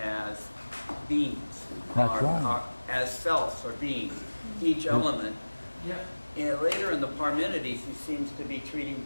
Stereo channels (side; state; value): both; inverted; correlation -1.00